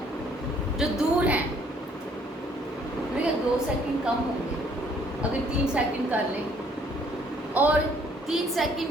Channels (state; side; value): normal; both; correlation 0.63